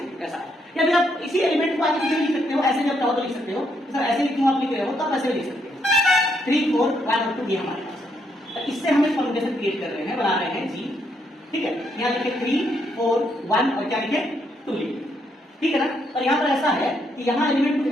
ऐसा है। या फिर आप इसी एलिमेंट को आगे पीछे लिख सकते हो, ऐसे जब चाहो तो लिख सकते हो, सर ऐसे क्यों आप लिख रहे हो, तब ऐसे लिख सकते हो 3 4 1 और 2 ये हमारे पास है। तो इससे हम एक परम्यूटेशन क्रिएट कर रहे हैं, बना रहे हैं G, ठीक है। यहाँ लिखे 3 4 1 और क्या लिखे 2 लिखे, ठीक है ना। और यहाँ पर ऐसा है कि यहाँ एलिमेंट कुछ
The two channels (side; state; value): both; normal; correlation 0.75